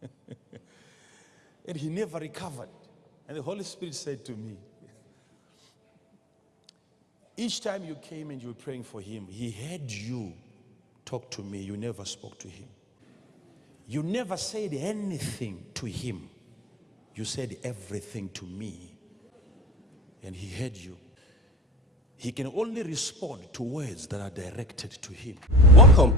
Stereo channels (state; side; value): normal; both; correlation 0.37